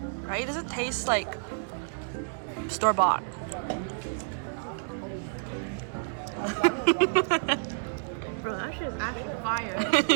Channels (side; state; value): left; silent; digital silence